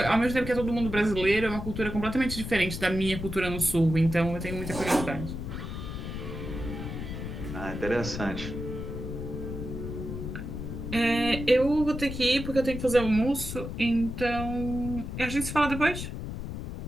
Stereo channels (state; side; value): noise; left; rumble, 6 dB below the sound